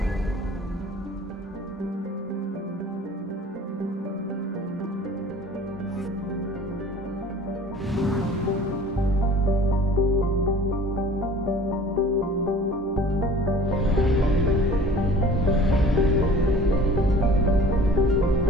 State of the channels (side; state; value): both; normal; correlation 0.47